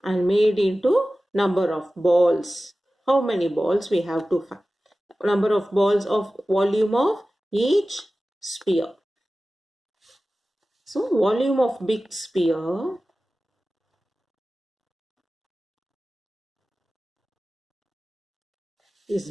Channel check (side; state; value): both; normal; correlation 0.96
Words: and made into number of balls. How many balls we have to find? Number of balls of volume of each sphere. So volume of big sphere is